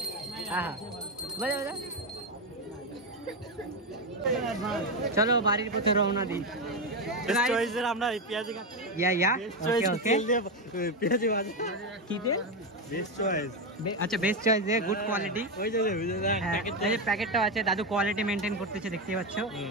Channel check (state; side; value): normal; both; correlation 0.10